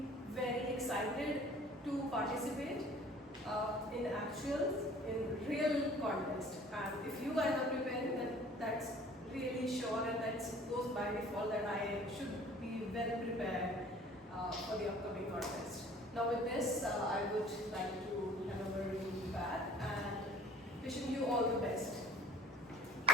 very excited to participate in actuals, in real contest. And if you guys are preparing, then that's really sure and that goes by default that I should be well prepared for the upcoming contest. Now with this, I would like to hand over to Pat and wishing you all the best.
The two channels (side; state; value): both; normal; correlation 0.50